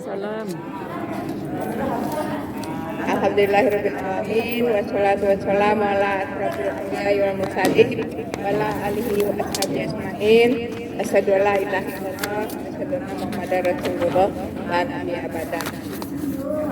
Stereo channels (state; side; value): identical; both; correlation 1.00